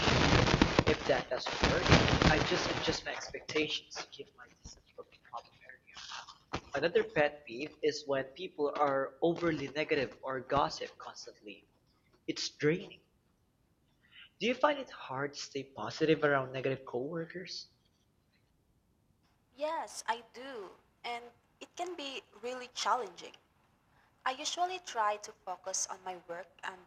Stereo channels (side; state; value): both; identical; correlation 1.00